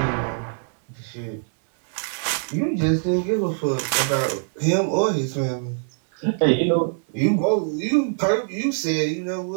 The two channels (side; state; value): left; silent; 63 dB below the other